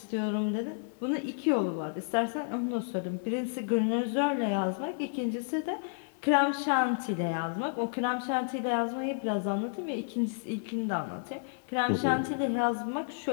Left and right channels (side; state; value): right; silent; digital silence